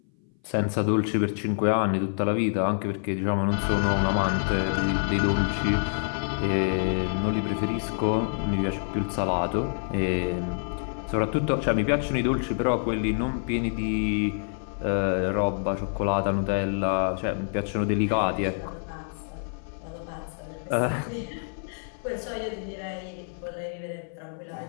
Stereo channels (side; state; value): right; silent; 57 dB below the other